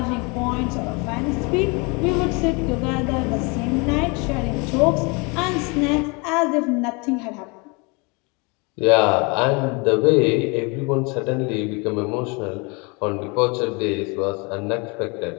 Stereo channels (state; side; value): quieter; right; 29.8 dB